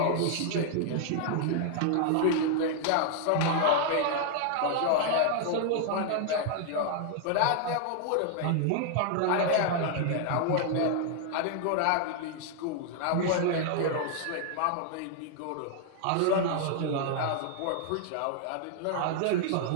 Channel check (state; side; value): different; both; correlation 0.00